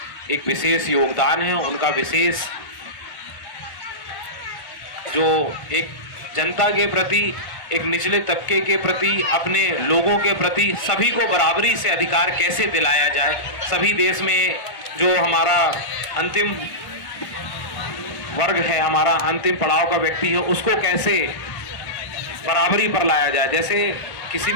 एक विशेष योगदान है। उनका विशेष जो एक जनता के प्रति, एक निचले तबके के प्रति, अपने लोगों के प्रति सभी को बराबरी से अधिकार कैसे दिलाया जाए, सभी देश में जो हमारा अंतिम वर्ग है, हमारा अंतिम पड़ाव का व्यक्ति है, उसको कैसे बराबरी पर लाया जाए। जैसे किसी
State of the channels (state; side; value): late; right; 1.5 ms